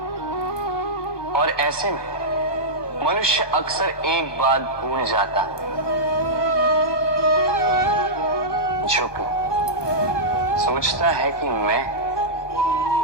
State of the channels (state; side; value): late; right; 1.2 ms